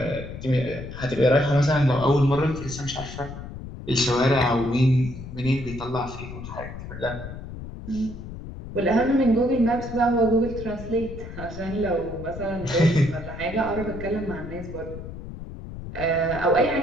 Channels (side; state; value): left; noise; rumble, 11 dB below the sound